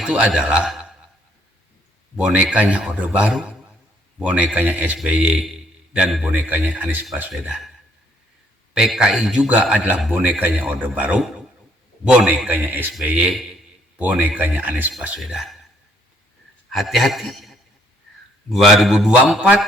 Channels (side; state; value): both; normal; correlation 0.66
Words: adalah bonekanya Orde Baru, bonekanya SBY, dan bonekanya Anies Baswedan. PKI juga adalah bonekanya Orde Baru, bonekanya SBY, bonekanya Anies Baswedan. Hati-hati,